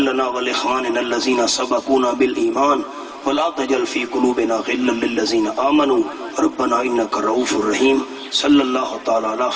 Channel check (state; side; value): identical; both; correlation 1.00